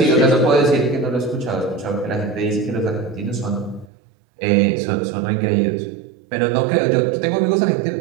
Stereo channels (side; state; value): left; drops out; at 3.9 s